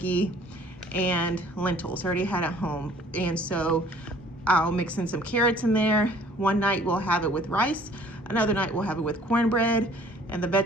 and lentils, already had at home. And so I'll mix in some carrots in there. One night we'll have it with rice. Another night we'll have it with cornbread. And the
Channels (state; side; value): normal; both; correlation 0.54